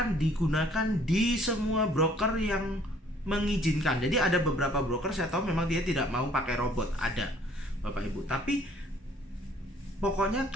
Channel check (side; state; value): both; normal; correlation 0.58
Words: digunakan di semua broker yang mengizinkan. Jadi ada beberapa broker saya tahu memang dia tidak mau pakai robot, ada Bapak Ibu. Tapi pokoknya